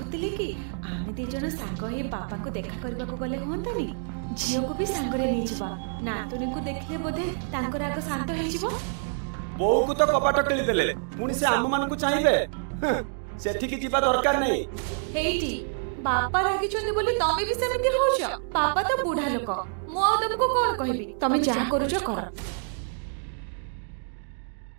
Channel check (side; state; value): left; silent; digital silence